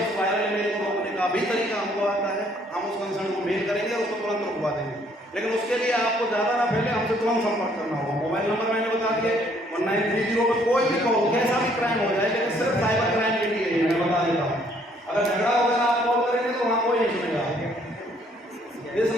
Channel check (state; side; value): normal; both; correlation 0.64